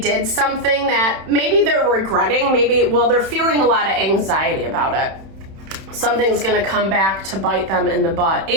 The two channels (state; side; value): late; left; 31 ms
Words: something that maybe they're regretting. They're feeling a lot of anxiety about it. Something's going to come back to bite them in the butt.